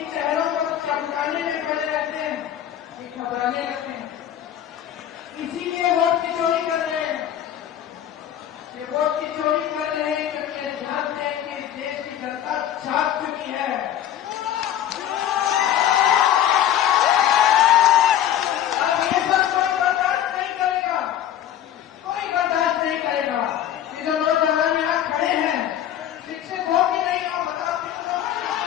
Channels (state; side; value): quieter; right; 10.9 dB